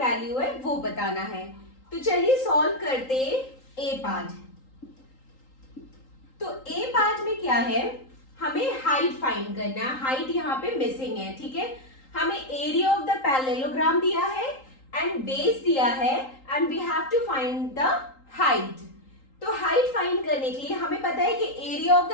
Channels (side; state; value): right; late; 3.8 ms